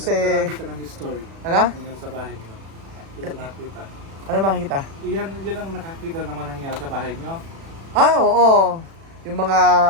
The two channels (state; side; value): late; left; 36 ms